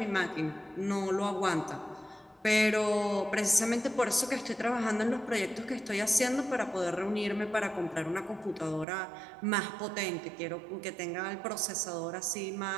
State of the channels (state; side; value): drops out; left; at 8.8 s